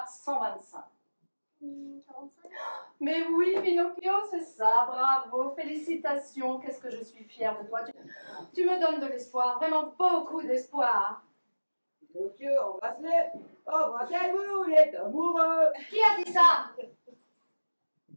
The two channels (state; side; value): inverted; both; correlation -1.00